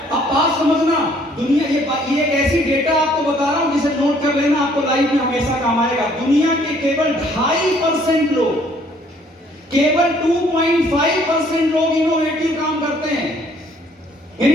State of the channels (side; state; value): both; normal; correlation 0.62